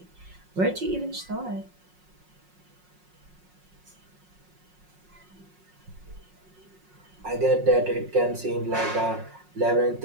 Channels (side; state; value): left; late; 5.5 ms